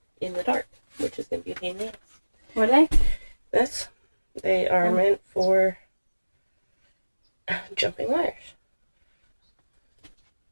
in the dark. which is going to be a pain in the ass. What are they? This, they are meant for jumping wires.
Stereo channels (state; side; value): inverted; both; correlation -1.00